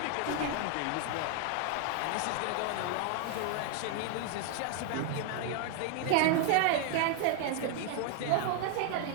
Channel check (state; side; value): different; both; correlation 0.00